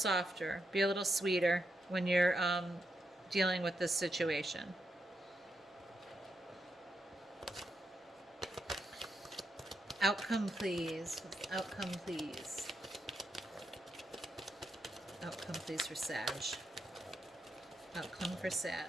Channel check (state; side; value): normal; both; correlation 0.83